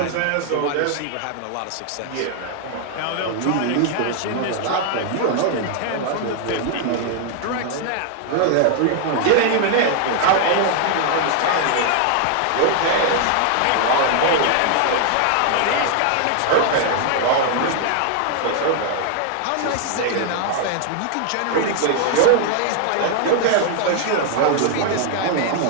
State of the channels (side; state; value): both; different; correlation 0.00